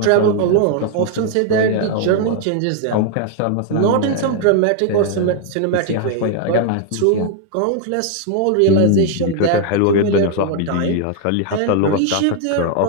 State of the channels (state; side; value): different; both; correlation 0.00